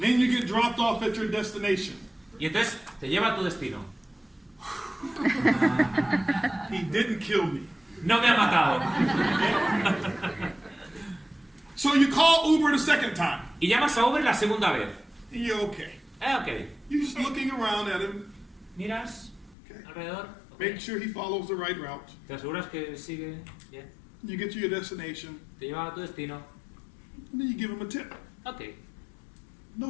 you get dropped off at your destination. Y entonces te lleva a tu destino. He didn't kill me. No me ha matado. So you call Uber the second time. Y llamas a Uber la segunda vez. And you're okay. Ok. You're just looking around at him. Miras Okay. alrededor. Make sure he follows the right route. Te aseguras que sigue bien. You get to your destination. Te lleva a tu destino. And then you give him a tip. Ok.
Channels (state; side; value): drops out; right; at 19.6 s